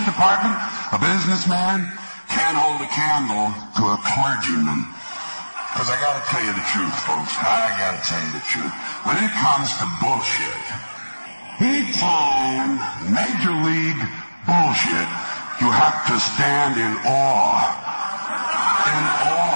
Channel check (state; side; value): inverted; both; correlation -1.00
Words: a businessman can't hold a candle to a clergyman. Because I gotta tell you the truth, folks. I gotta tell you the truth. When it comes to bullshit, big time, major league bullshit, you have to stand in awe